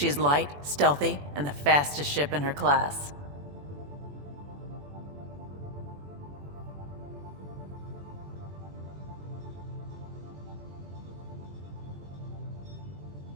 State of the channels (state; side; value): late; left; 21 ms